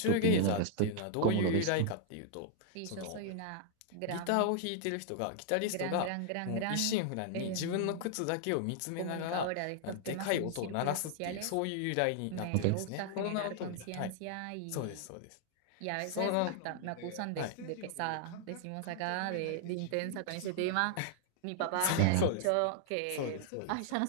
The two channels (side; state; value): both; different; correlation -0.01